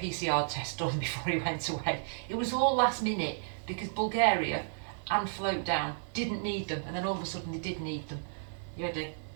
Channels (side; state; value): left; silent; digital silence